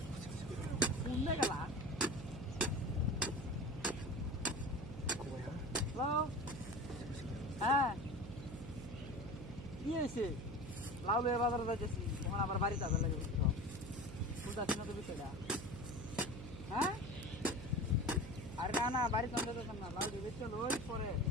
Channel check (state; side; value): noise; right; hum, 10 dB below the sound